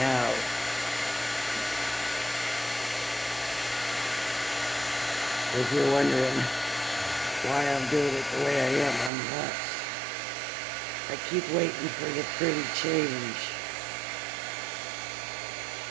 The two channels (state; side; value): drops out; left; at 9.1 s